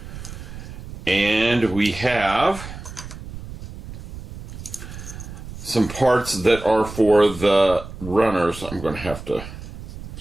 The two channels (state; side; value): noise; right; rumble, 12 dB below the sound